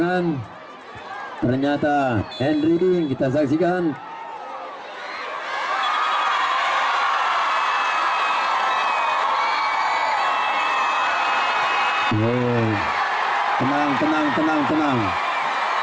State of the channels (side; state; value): both; identical; correlation 1.00